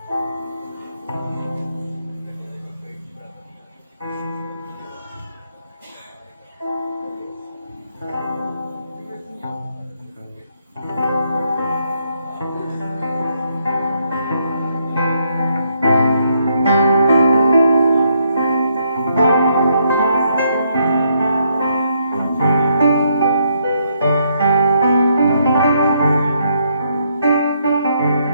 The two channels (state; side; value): inverted; both; correlation -0.75